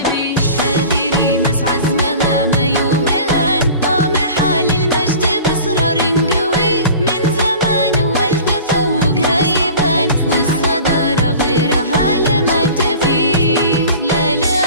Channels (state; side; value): inverted; both; correlation -0.40